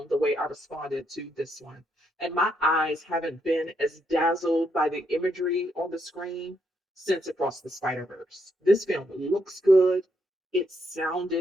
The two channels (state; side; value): normal; both; correlation 0.77